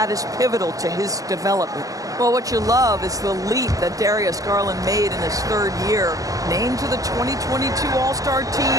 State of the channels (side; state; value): left; late; 0.17 ms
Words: is pivotal to his development. Well, what you love is the leap that Darius Garland made in his 3rd year. Named to the 2022 All-Star